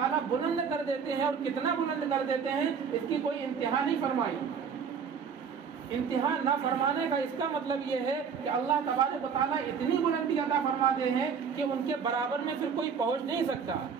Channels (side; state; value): left; quieter; 6.5 dB